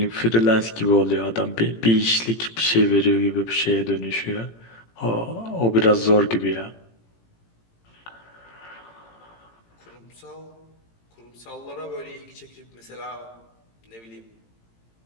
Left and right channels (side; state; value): right; late; 18 ms